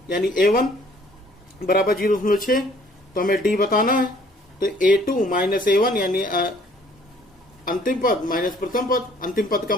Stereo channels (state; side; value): normal; both; correlation 0.59